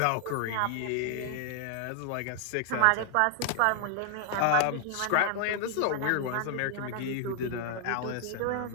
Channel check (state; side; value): different; both; correlation 0.00